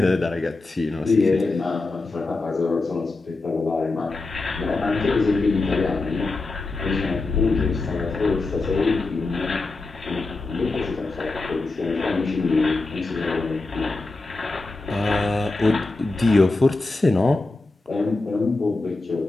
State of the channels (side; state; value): right; quieter; 3.3 dB